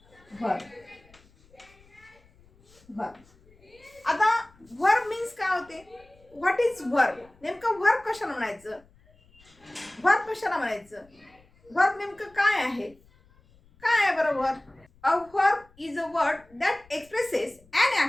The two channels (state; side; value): noise; left; rumble, 29 dB below the sound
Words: वर्ब. आता वर्ब मीन्स काय होते? What is verb? नेमकं वर्ब कशाला म्हणायचं? वर्ब कशाला म्हणायचं? वर्ब नेमकं काय आहे? काय आहे बरं verb? A verb is a word that expresses an